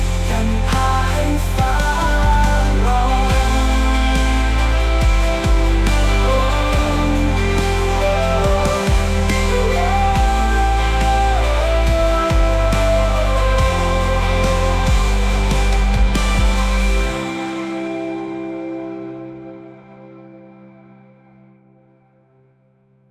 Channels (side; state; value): both; identical; correlation 1.00